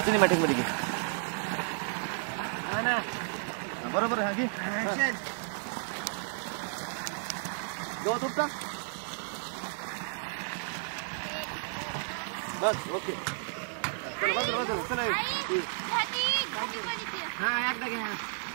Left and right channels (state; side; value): silent; left; digital silence